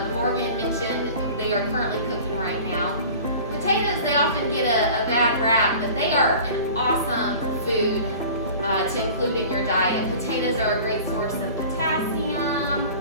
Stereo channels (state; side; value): inverted; both; correlation -0.42